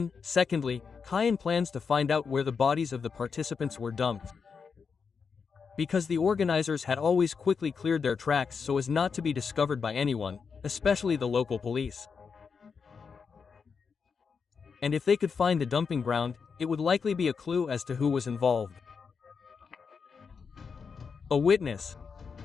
secondly, Kaien plans to find out where the bodies of the participants were dumped. Because the organizers had always quickly cleared their tracks so as not to be discovered by anyone, especially the local police. And if they could find the dumping ground, it would likely be a clue as to who was involved. A witness.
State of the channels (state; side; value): quieter; right; 5.7 dB